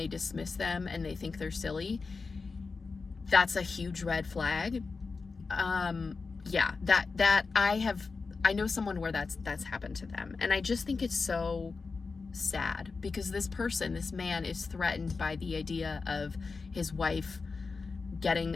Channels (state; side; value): quieter; right; 4.4 dB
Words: dismiss them and they think they're silly, that's a huge red flag. Yeah, that I know someone where that's happened to them, and I just think it's so sad because this man is threatened by the idea of his wife getting